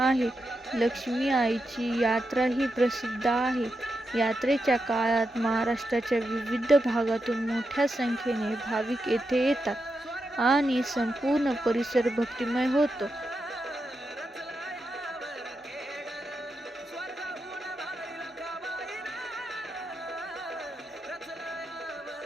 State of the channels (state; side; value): normal; both; correlation 0.87